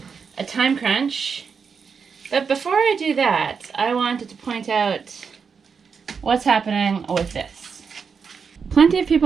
time crunch. But before I do that, I wanted to point out what's happening with this. Plenty of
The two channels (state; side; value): quieter; left; 5.9 dB